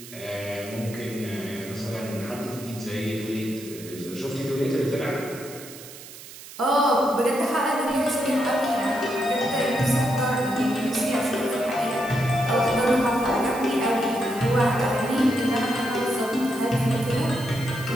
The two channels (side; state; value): right; noise; hiss, 16 dB below the sound